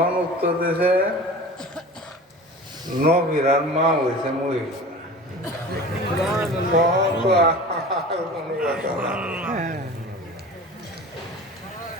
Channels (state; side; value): normal; both; correlation 0.37